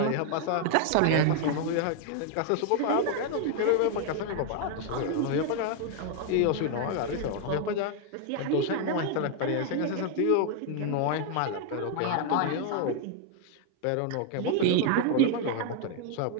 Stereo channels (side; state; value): both; different; correlation 0.00